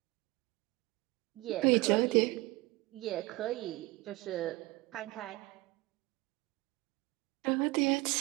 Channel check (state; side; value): quieter; left; 21.1 dB